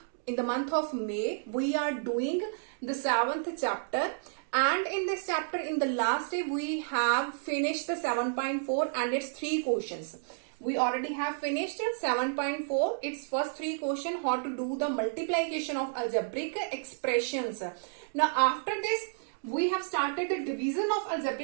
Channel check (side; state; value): left; silent; digital silence